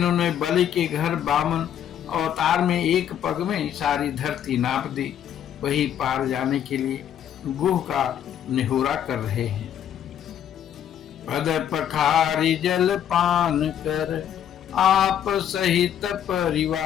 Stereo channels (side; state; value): right; quieter; 9.9 dB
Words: बलि के घर बामन अवतार में एक पग में सारी धरती नाप दी, वही पार जाने के लिए गुह का निहोरा कर रहे हैं। पद पखारी जल पान कर, आप सहित